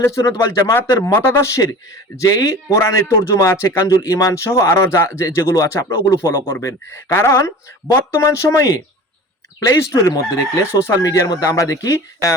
সুন্নাত ওয়াল জামাতের মতাদর্শের যেই কোরআনের তর্জমা আছে, কানজুল ঈমান সহ আরো যেগুলো আছে, আপনারা ওগুলো ফলো করবেন। কারণ বর্তমান সময়ে প্লে স্টোরের মধ্যে দেখলে, সোশ্যাল মিডিয়ার মধ্যে আমরা দেখি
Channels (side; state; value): both; normal; correlation 0.38